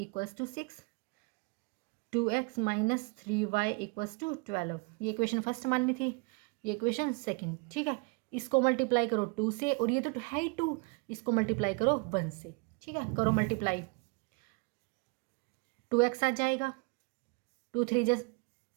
to 6, 2x - 3y equals to 12, ये इक्वेशन फर्स्ट माननी थी, ये इक्वेशन सेकंड। ठीक है, इसको मल्टीप्लाई करो 2 से, और ये तो है ही 2, इसको मल्टीप्लाई करो 1 से। ठीक है, करो मल्टीप्लाई, 2x आ जाएगा, 2 3 जा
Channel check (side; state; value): left; quieter; 30.0 dB